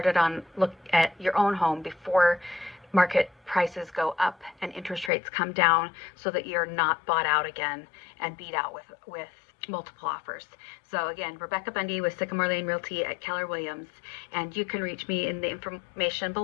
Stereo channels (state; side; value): drops out; right; at 5.1 s